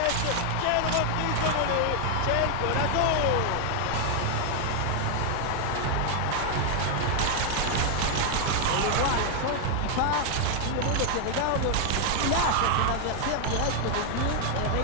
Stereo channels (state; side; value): different; both; correlation 0.00